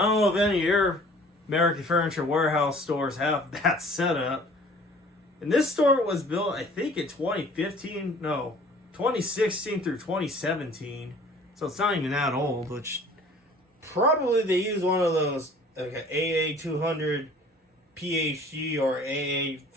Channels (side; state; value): both; normal; correlation 0.51